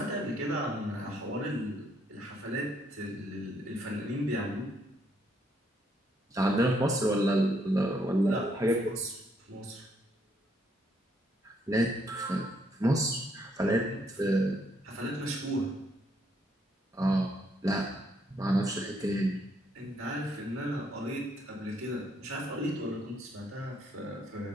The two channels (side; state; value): both; normal; correlation 0.72